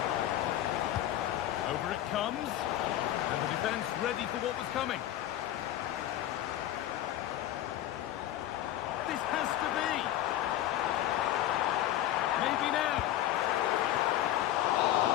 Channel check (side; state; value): right; quieter; 13.1 dB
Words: Over it comes. And the defence ready for what was coming. This has to be. Maybe now.